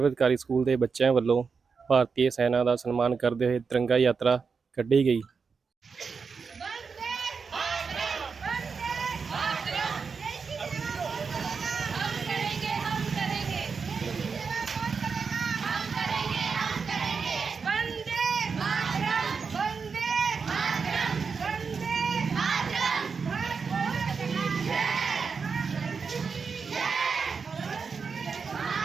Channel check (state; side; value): quieter; left; 5.4 dB